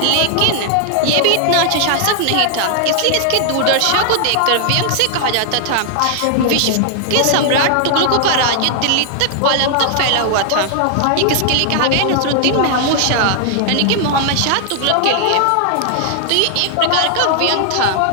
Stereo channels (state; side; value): different; both; correlation 0.00